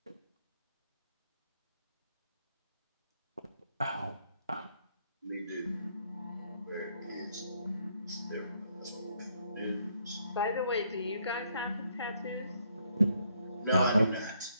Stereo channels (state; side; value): inverted; both; correlation -0.72